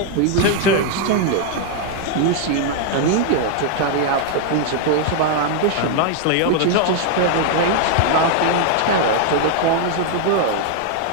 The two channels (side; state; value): both; different; correlation 0.00